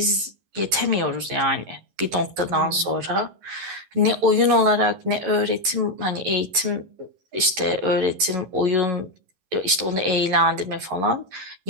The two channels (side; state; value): left; late; 11 ms